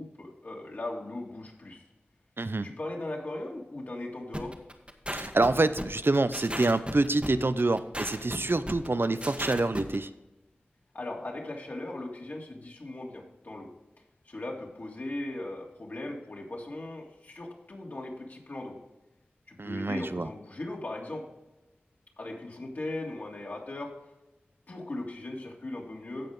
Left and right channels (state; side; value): normal; both; correlation 0.87